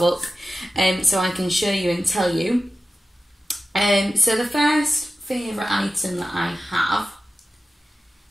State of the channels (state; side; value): normal; both; correlation 0.93